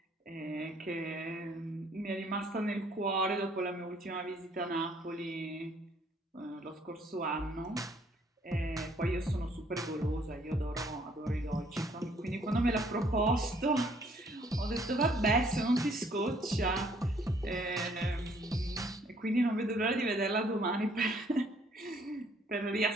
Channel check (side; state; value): both; normal; correlation 0.63